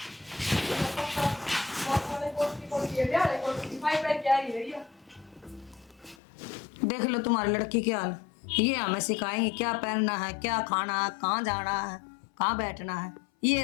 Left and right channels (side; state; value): right; drops out; at 6.2 s